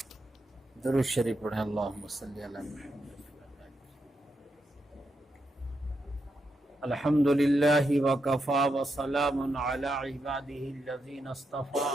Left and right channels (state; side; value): normal; both; correlation 0.84